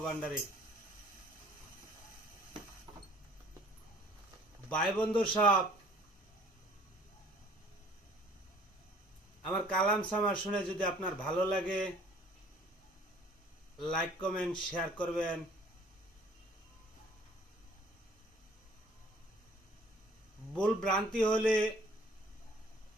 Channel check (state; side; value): normal; both; correlation 0.54